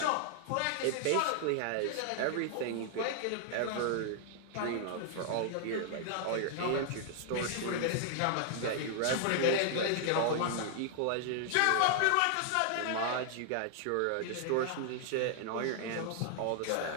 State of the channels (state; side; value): different; both; correlation 0.00